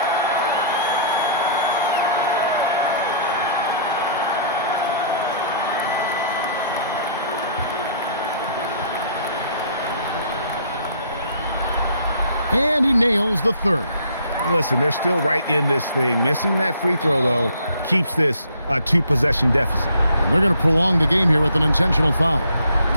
And he nails the third. Listen, they're still right in this thing. Missing that free throw, though, keeps this a 2-possession deficit. And they're going to prolong the game here with an intentional foul.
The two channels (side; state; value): both; inverted; correlation -0.58